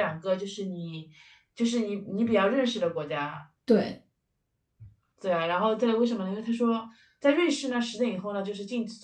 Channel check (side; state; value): both; identical; correlation 1.00